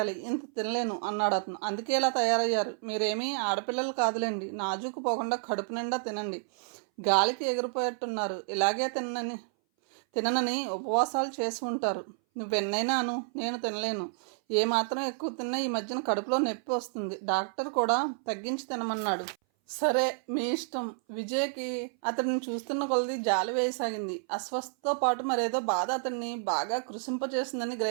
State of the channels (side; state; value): left; silent; 58 dB below the other